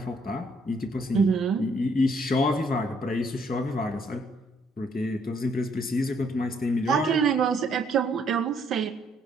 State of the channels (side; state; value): both; normal; correlation 0.68